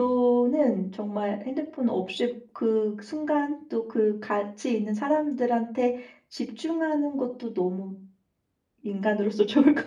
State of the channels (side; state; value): both; identical; correlation 1.00